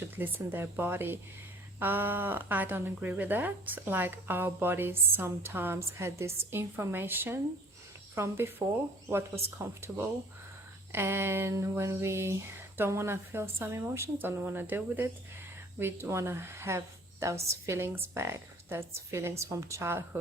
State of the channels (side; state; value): both; normal; correlation 0.52